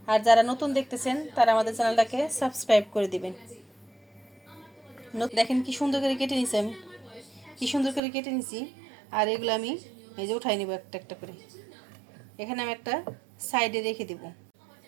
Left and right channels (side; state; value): left; drops out; at 8.0 s